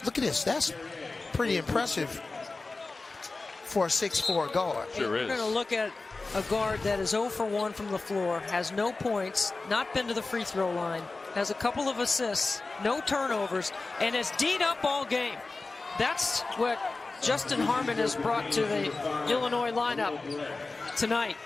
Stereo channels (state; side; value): quieter; right; 3.6 dB